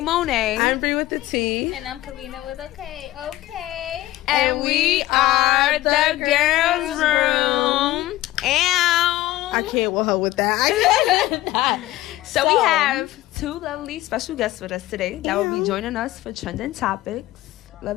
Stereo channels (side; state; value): right; quieter; 16.4 dB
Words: Monet. I'm Bree with the T. And I'm Karina with a K. Okay. And we are the Girlsss Room. I can't with her with that. So we have two lovely special guests with us today that will be joining us for Trending Topics.